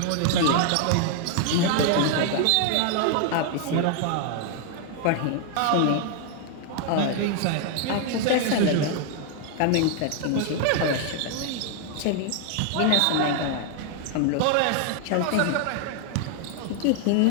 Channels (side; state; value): both; different; correlation 0.00